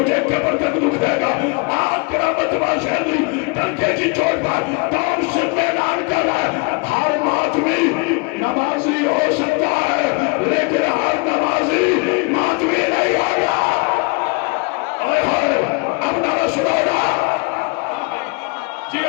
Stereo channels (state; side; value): quieter; right; 30.8 dB